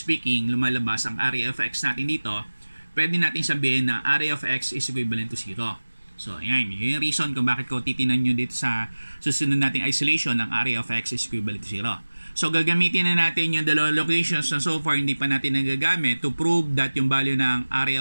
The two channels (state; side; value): inverted; both; correlation -1.00